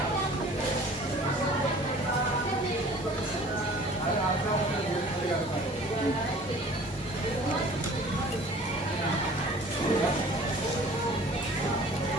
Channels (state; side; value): normal; both; correlation 0.48